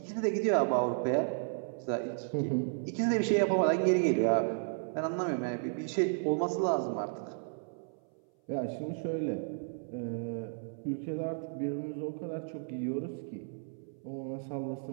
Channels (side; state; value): left; silent; 56 dB below the other